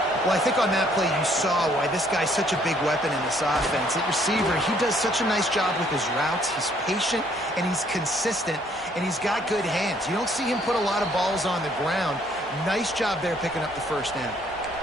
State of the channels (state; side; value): normal; both; correlation 0.64